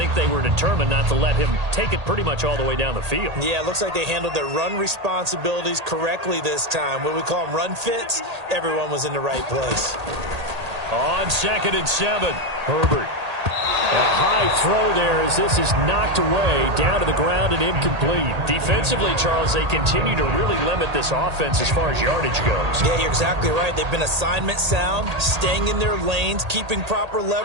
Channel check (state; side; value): late; left; 1.8 ms